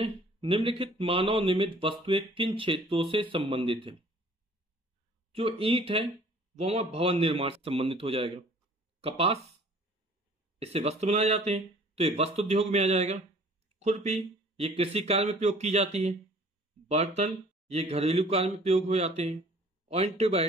निम्नलिखित मानव निर्मित वस्तुएं किन क्षेत्रों से संबंधित है? जो ईंट है वो हमारा भवन निर्माण से संबंधित हो जाएगा। कपास इससे वस्त्र बनाए जाते हैं, तो ये वस्त्र उद्योग में आ जाएगा। खुरपी ये कृषि कार्य में प्रयोग की जाती है। बर्तन ये घरेलू कार्य में प्रयोग हो जाते हैं। और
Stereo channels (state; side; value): normal; both; correlation 0.53